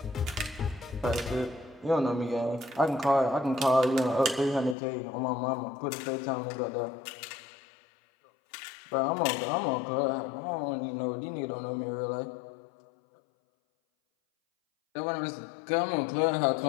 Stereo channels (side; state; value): right; drops out; at 4.8 s